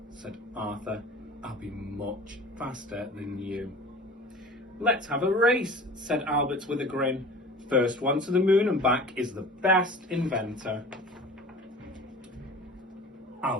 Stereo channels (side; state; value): both; normal; correlation 0.40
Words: said Arthur. "I'll be much faster than you." "Let's have a race," said Albert with a grin. "First one to the moon and back is the best inventor."